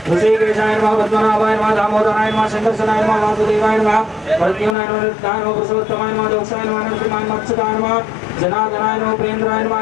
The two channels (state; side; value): drops out; right; at 4.8 s